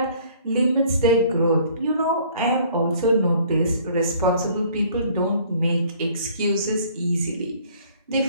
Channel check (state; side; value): inverted; both; correlation -0.56